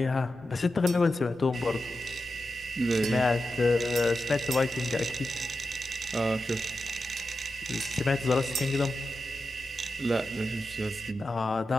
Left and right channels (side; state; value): left; noise; rumble, 27 dB below the sound